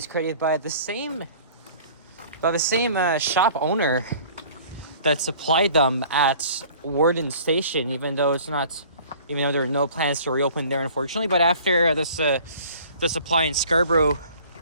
created by the same shop owner that supplied them at Warden Station, even though there are no plans to reopen there, unfortunately. But after the supply in Scarborough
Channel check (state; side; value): inverted; both; correlation -0.49